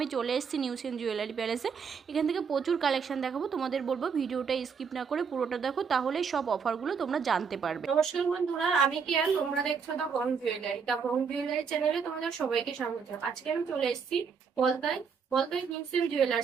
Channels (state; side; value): quieter; left; 6.1 dB